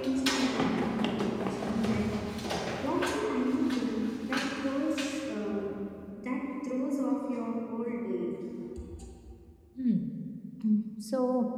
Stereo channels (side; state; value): both; identical; correlation 1.00